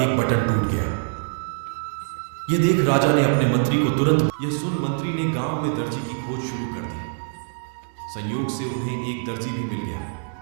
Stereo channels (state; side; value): silent; left; digital silence